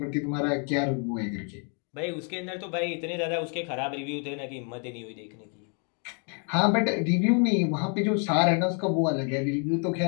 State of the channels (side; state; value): right; quieter; 39.7 dB